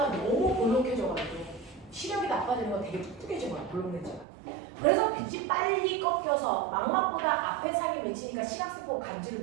너무 볼록해져가지고 시력이 나빠지는 건 되게 뚱뚱해진 거야, 볼록 렌즈가. 그래서 빛이 빨리 꺾여서 망막보다 앞에 상이 맺히니까 시각세포가 감지를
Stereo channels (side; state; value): left; drops out; at 4.2 s